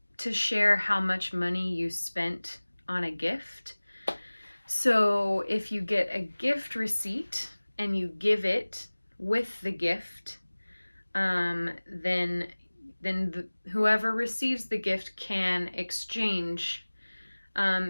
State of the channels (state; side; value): inverted; both; correlation -1.00